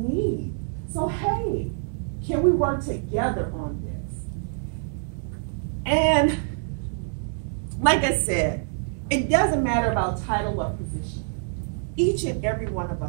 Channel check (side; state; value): left; silent; 61 dB below the other